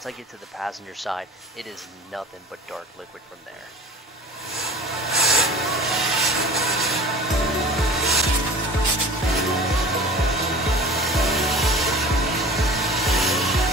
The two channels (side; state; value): both; normal; correlation 0.39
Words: I get to the passenger side, it is nothing but dark liquid from there.